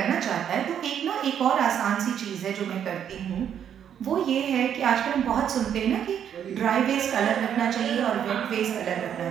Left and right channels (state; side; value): quieter; left; 9.0 dB